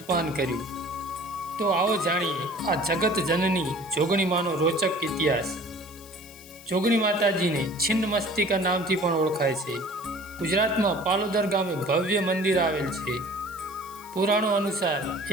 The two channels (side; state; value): left; noise; hiss, 19 dB below the sound